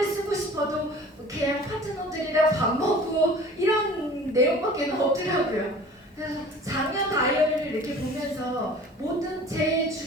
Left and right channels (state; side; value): normal; both; correlation 0.45